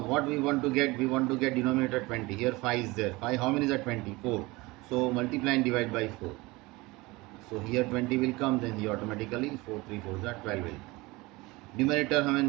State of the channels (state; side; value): quieter; left; 22.5 dB